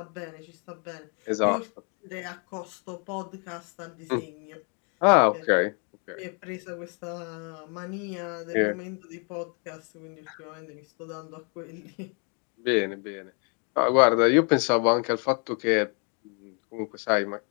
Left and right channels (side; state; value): right; quieter; 37.5 dB